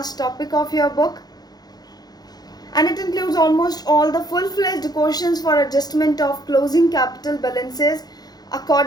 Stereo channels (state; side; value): late; right; 0.19 ms